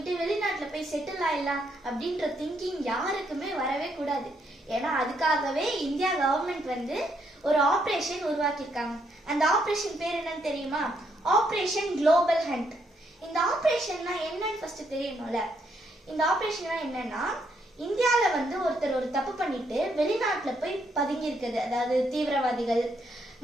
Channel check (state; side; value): normal; both; correlation 0.75